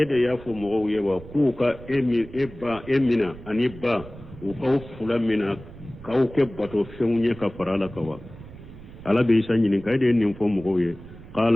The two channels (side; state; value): right; noise; rumble, 17 dB below the sound